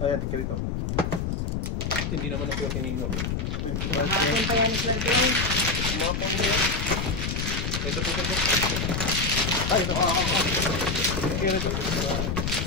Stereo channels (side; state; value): left; noise; rumble, 1 dB below the sound